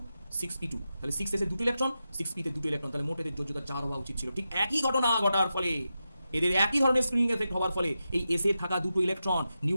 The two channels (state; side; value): inverted; both; correlation -0.90